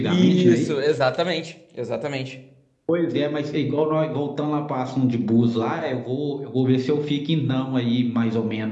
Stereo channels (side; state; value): both; identical; correlation 1.00